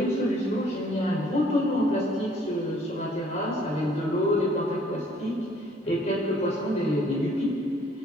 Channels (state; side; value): normal; both; correlation 0.60